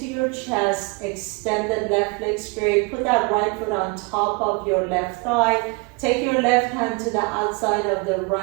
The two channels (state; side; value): quieter; left; 29.4 dB